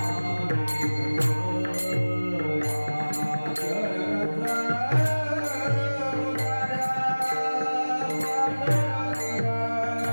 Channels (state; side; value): inverted; both; correlation -1.00